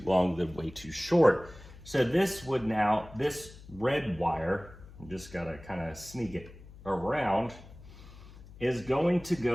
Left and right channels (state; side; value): noise; left; hum, 19 dB below the sound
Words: long than way too short. So this would now, this red wire, I'm just gotta kind of sneak it around, is going to